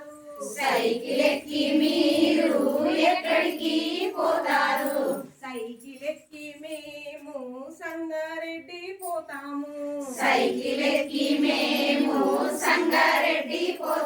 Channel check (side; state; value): both; identical; correlation 1.00